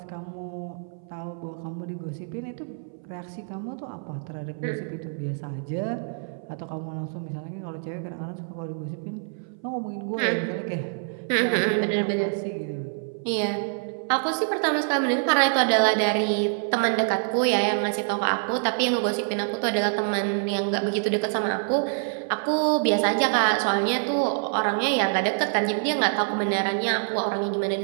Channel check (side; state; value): left; silent; 58 dB below the other